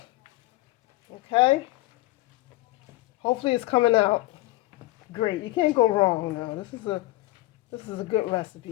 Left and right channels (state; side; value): quieter; right; 18.5 dB